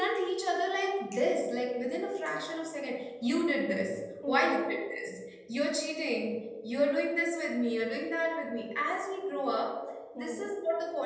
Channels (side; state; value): both; identical; correlation 1.00